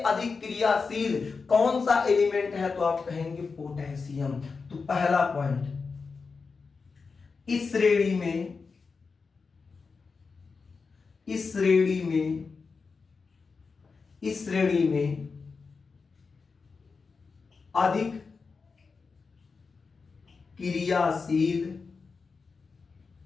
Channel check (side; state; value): right; quieter; 4.8 dB